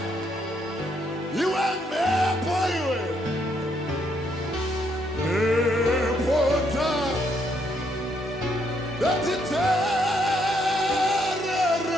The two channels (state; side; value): normal; both; correlation 0.73